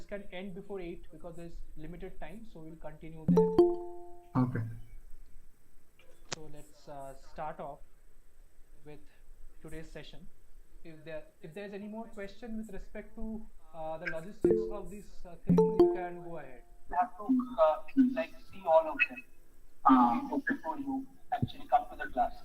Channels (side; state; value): both; identical; correlation 1.00